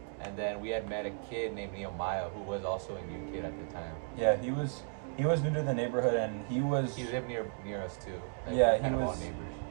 and then we had met a kid named Nehemiah who was also a new kid at the time. Yeah, he was new to the neighborhood, and he lived near us too. Like, Yeah, we were he kind of all was- neighbors.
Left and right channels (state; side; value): silent; left; 55 dB below the other